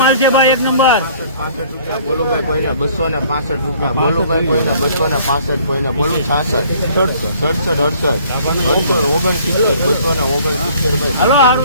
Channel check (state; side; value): inverted; both; correlation -0.56